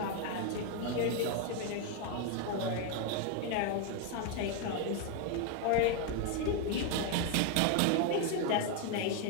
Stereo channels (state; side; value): different; both; correlation 0.01